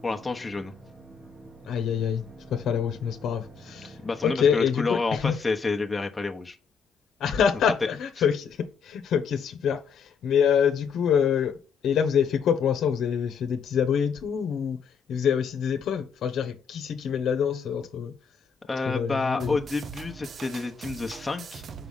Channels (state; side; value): quieter; right; 6.4 dB